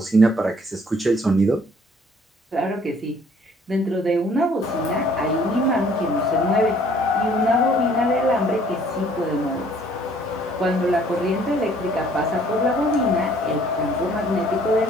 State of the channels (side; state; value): both; normal; correlation 0.59